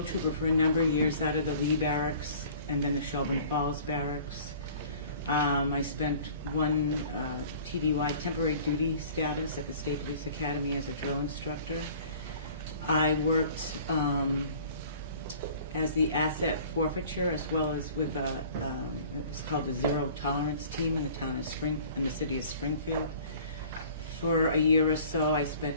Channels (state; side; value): inverted; both; correlation -0.48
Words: trooper for a number of years out of the Lee Barracks and then the Shelburne Falls Barracks. I spent one TDY, temporary duty status, at the State Police Academy as a drill instructor. I worked as the asset forfeiture as well as with it was called the Zero Tolerance Team in the town of in the city of Springfield. For a year or so, I